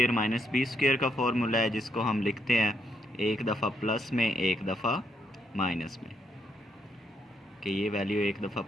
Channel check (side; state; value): both; normal; correlation 0.76